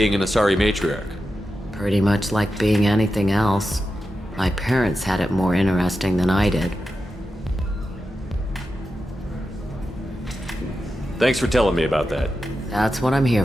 an Asari matriarch? Pretty much like being anything else. My parents had it more interesting than I did. Thanks for telling me about that. That's what I'm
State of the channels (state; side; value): normal; both; correlation 0.90